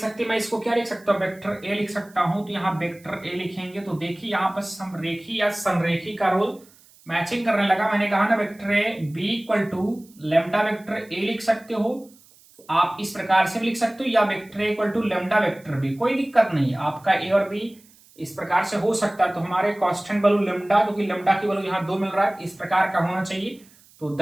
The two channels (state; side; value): noise; right; hiss, 27 dB below the sound